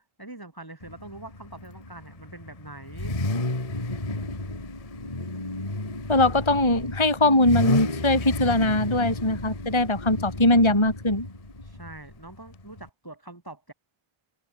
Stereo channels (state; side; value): late; right; 1.3 ms